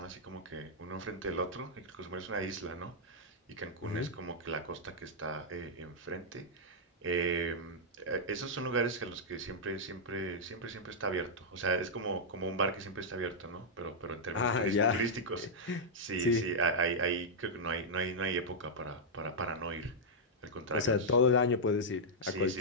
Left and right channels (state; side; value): normal; both; correlation -0.07